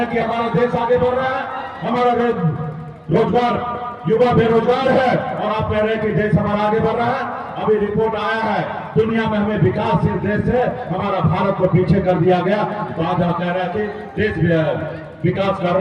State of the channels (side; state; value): both; identical; correlation 1.00